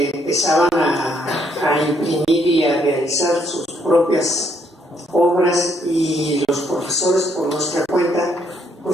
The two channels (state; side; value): normal; both; correlation 0.71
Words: a imprimir y a realizar sus propias obras, y los profesores por nuestra cuenta